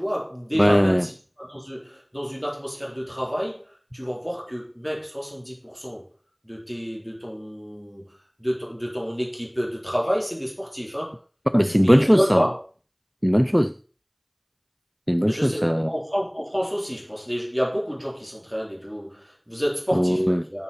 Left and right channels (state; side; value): identical; both; correlation 1.00